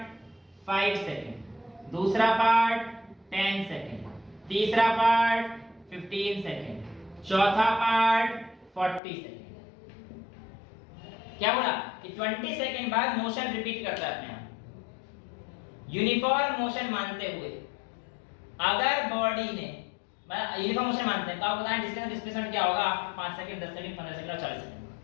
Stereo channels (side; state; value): right; drops out; at 9.0 s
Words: 5 सेकेंड, दूसरा पार्ट 10 सेकेंड, तीसरा पार्ट 15 सेकेंड, चौथा पार्ट 40 सेकेंड। क्या बोला कि 20 सेकेंड बाद मोशन रिपीट करता है अपने आप, यूनिफॉर्म मोशन मानते हुए। अगर बॉडी ने यूनिफॉर्म मोशन मानते हैं तो आप बताएं डिस्टेंस डिस्प्लेसमेंट क्या होगा आफ्टर 5 सेकंड, 10 सेकंड, 15 सेकंड और 40